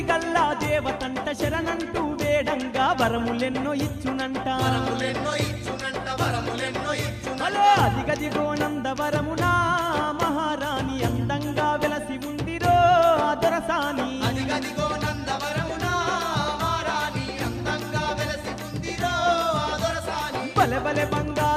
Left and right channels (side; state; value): both; identical; correlation 1.00